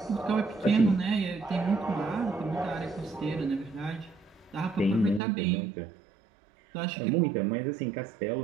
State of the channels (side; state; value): left; drops out; at 5.2 s